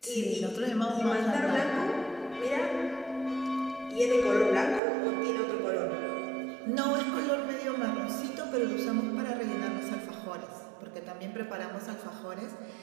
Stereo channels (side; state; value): left; drops out; at 4.8 s